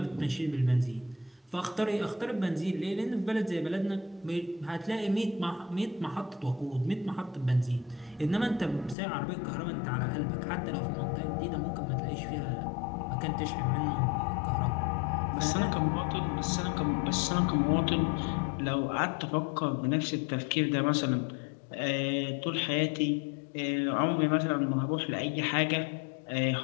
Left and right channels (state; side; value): drops out; right; at 9.0 s